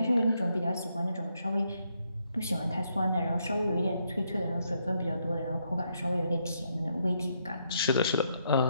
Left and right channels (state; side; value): inverted; both; correlation -0.77